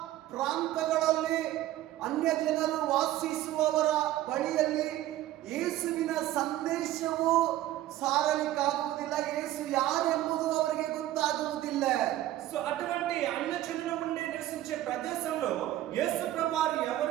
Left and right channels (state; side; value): quieter; left; 14.2 dB